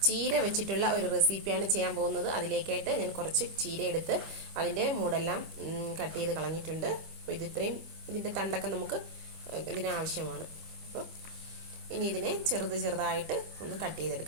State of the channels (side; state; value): left; late; 25 ms